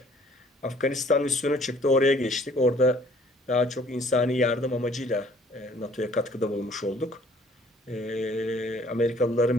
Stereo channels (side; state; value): both; normal; correlation 0.57